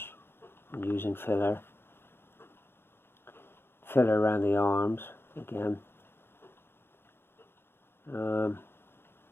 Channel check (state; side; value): late; right; 0.11 ms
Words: and using filler. Filler around the arms again.